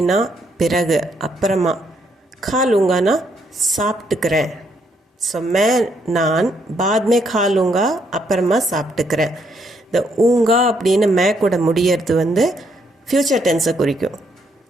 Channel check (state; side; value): normal; both; correlation 0.73